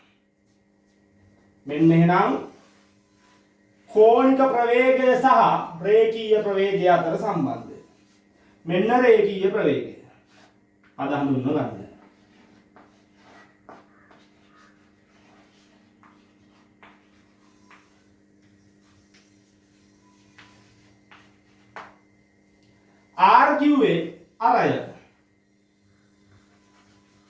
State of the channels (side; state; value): both; identical; correlation 1.00